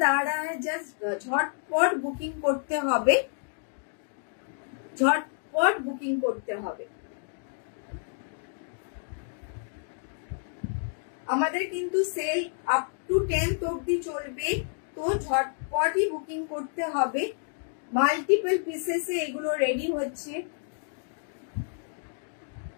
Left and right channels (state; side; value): silent; right; digital silence